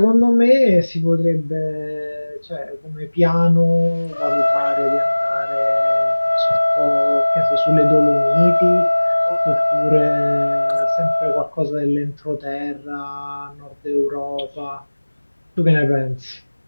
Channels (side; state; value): both; inverted; correlation -1.00